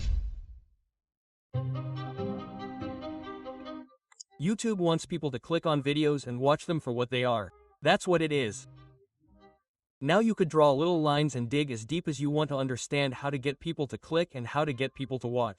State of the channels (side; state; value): both; identical; correlation 1.00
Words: YouTube wants people to click on videos and watch them for what they are. That's what it is. Now you could draw little lines and dig as deep as you want to understand how to get people to click and how to get people to